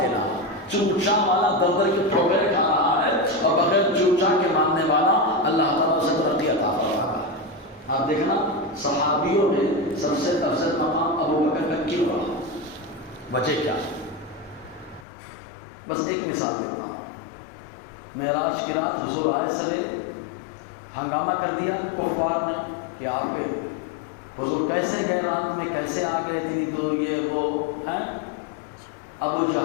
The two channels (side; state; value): right; drops out; at 15.1 s